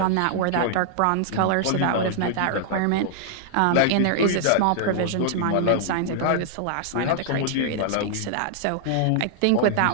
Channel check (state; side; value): different; both; correlation -0.01